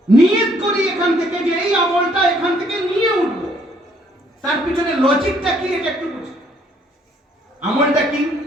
নিয়ত করি এখান থেকে যে এই আমলটা এখান থেকে নিয়ে উঠবো, তার পিছনে লজিকটা কি এটা একটু বুঝি। আমলটা কি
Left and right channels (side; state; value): both; normal; correlation 0.65